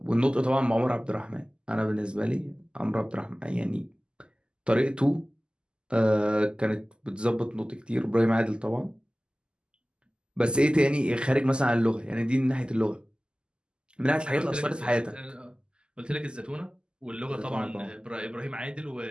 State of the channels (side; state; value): left; late; 0.049 ms